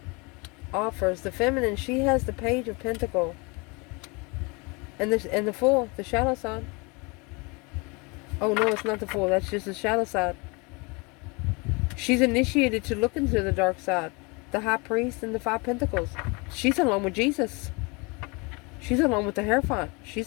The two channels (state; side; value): quieter; right; 28.7 dB